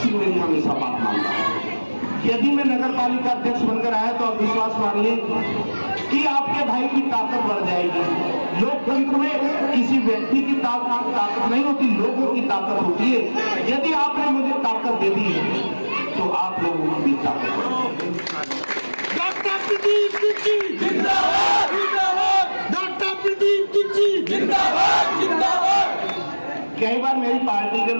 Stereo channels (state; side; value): inverted; both; correlation -1.00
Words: में भी हमेशा बात मानता हूं। यदि मैं नगर पालिका अध्यक्ष बनकर आया तो आप विश्वास मानिए कि आपके भाई की ताकत बढ़ जाएगी। लोकतंत्र में किसी व्यक्ति की ताकत नहीं होती, लोगों की ताकत होती है। यदि आपने मुझे ताकत दे दी तो आप लोगों की भी ताकत। डॉक्टर प्रदीप तिच्ची जिंदाबाद जिंदाबाद, डॉक्टर प्रदीप तिच्ची जिंदाबाद जिंदाबाद। कई बार मेरी पार्टी के